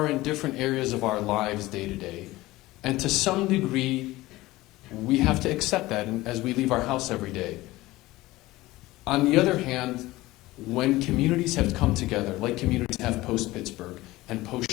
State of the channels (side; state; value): right; quieter; 18.5 dB